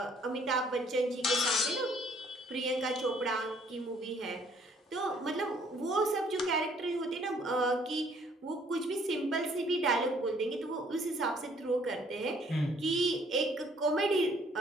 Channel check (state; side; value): normal; both; correlation 0.62